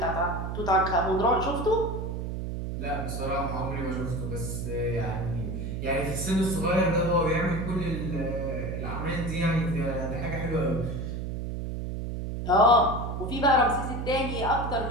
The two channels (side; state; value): right; noise; hum, 4 dB below the sound